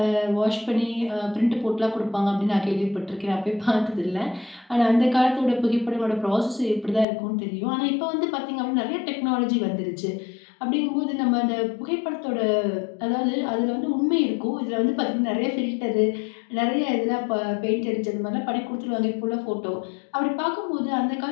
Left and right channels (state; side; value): drops out; right; at 7.1 s